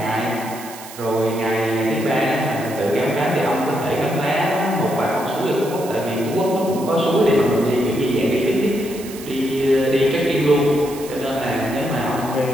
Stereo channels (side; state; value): right; noise; hiss, 15 dB below the sound